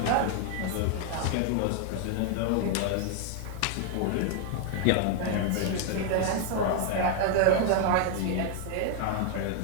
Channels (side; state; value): both; different; correlation 0.00